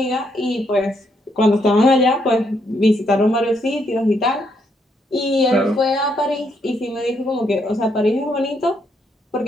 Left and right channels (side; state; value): both; normal; correlation 0.75